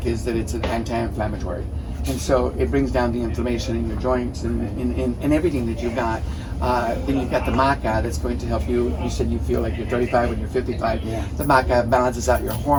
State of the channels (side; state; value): both; identical; correlation 1.00